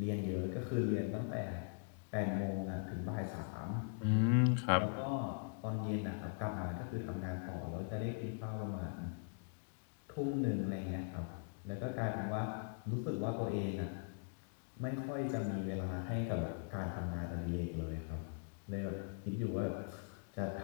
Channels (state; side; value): silent; right; digital silence